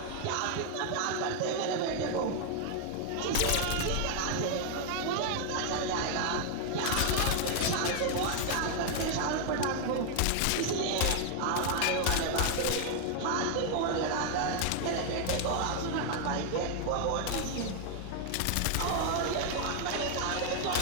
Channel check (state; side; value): different; both; correlation 0.00